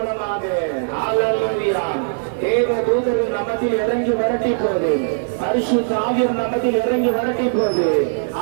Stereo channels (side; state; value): left; silent; 59 dB below the other